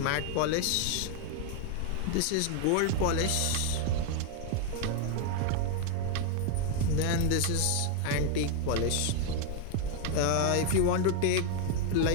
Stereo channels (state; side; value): different; both; correlation 0.01